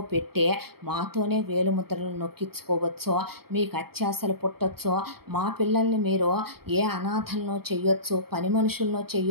పెట్టే మాతోనే వేలుముద్రలు నొక్కించుకోవచ్చో, మీకు అత్యాశలు పుట్టొచ్చో, మా పిల్లల్ని మీరు ఏ అనాథలను చెయ్యొచ్చు, పని మనుషులను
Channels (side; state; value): left; late; 0.95 ms